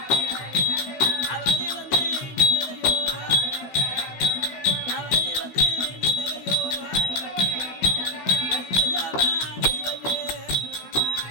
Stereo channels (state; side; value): late; right; 16 ms